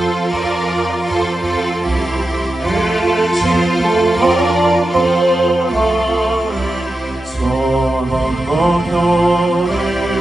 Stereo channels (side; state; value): both; normal; correlation 0.91